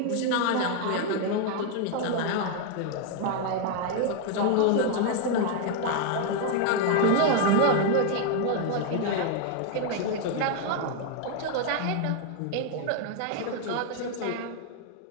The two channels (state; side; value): different; both; correlation 0.00